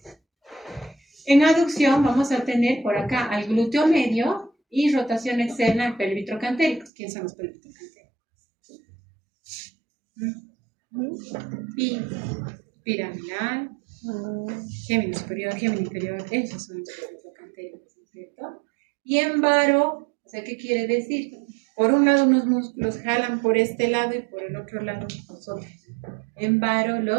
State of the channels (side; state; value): left; drops out; at 6.9 s